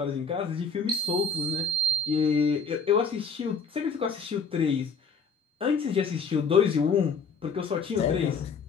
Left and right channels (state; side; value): quieter; right; 4.7 dB